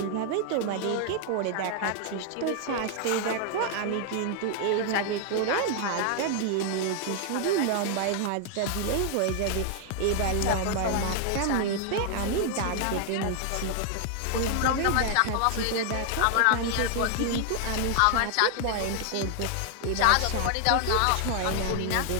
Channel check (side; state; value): both; different; correlation 0.00